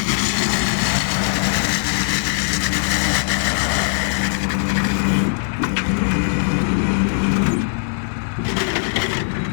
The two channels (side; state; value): right; silent; digital silence